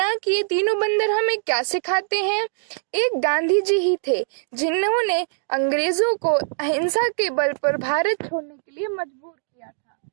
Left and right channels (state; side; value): silent; left; digital silence